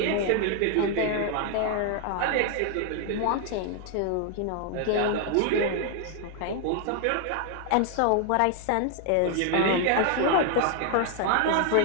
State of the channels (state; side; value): different; both; correlation 0.00